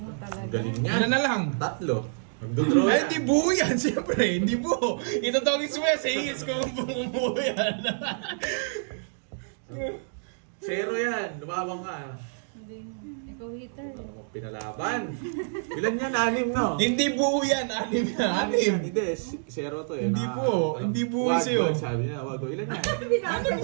talaga. Ang galing niya. Ano na lang? Tatlo. Magdodraw Ay, na. hindi buo yan, siyempre. Hindi buo. Ito tawagin suya, sa hingis ko kung buo yan. Zero yan. Lumabang ka. Hindi. Ikaw hater. Ano mo pinalaban? Ilan yan? 6, no? Hindi buo yan, anim yan. Anim. Hindi, zero to eh. Hindi buo. Hindi buo Wag, sa'yo. wag, sabi niya, wag. Ilan yan? Anim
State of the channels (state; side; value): silent; left; digital silence